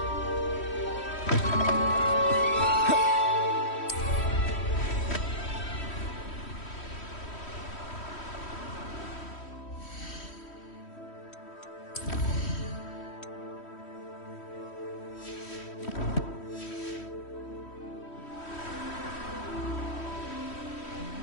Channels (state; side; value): late; right; 3.1 ms